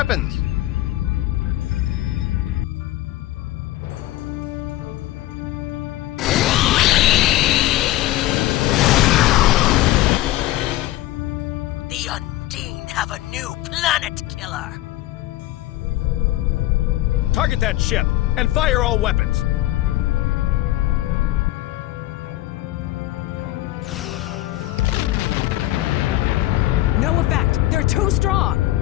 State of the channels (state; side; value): quieter; right; 16.0 dB